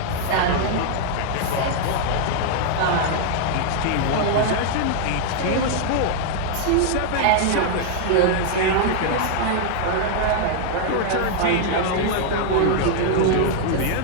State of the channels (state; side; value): different; both; correlation -0.01